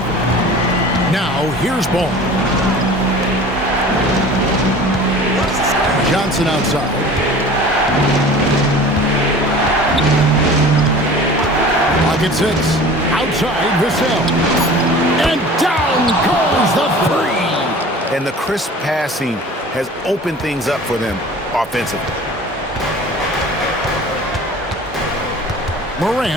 Now, here's Ball. Johnson outside. Pocket 6. Outside, Vassell. And down goes the three. And the crisp passing has opened things up for them offensively.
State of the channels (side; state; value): both; normal; correlation 0.42